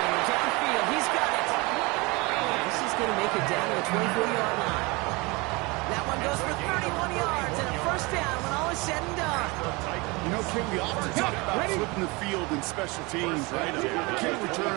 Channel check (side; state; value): left; quieter; 25.7 dB